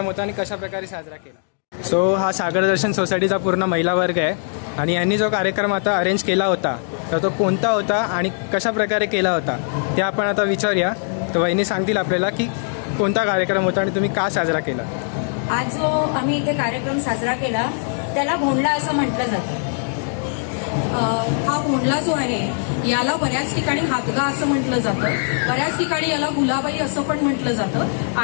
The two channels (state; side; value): silent; right; digital silence